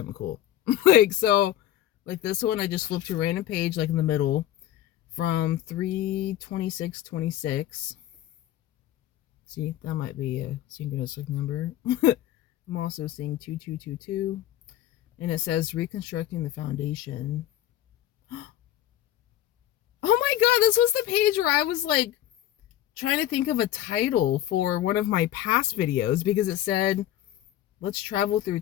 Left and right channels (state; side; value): quieter; right; 12.8 dB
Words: cool. Like, so like this one I just flipped to a random page like in the middle from 3/26/26. See, that might be a synchronistic number. I'm also seeing 2222, and it says reconstructing the foundation. Oh my god, this was the page where I was like trying to think of a title for one of my past videos because it said, let's travel through